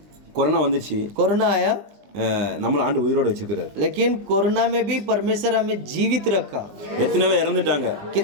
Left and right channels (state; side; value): late; left; 20 ms